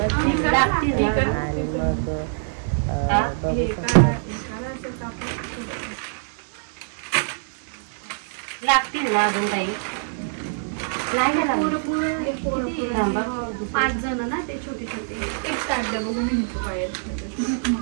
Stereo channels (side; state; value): left; silent; 62 dB below the other